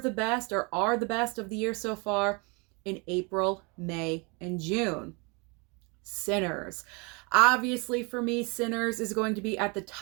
best or are the best of the year so far in April, May, and June? Sinners. Obviously, for me, Sinners is going to be at the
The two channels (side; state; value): left; quieter; 31.0 dB